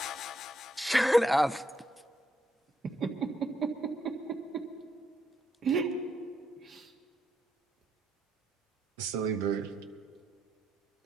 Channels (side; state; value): both; normal; correlation 0.77